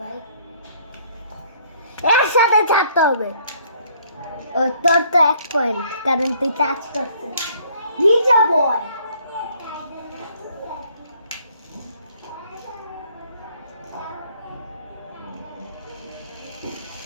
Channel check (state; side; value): inverted; both; correlation -0.62